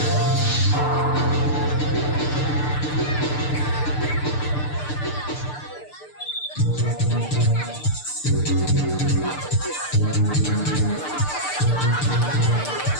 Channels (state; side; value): late; right; 6.7 ms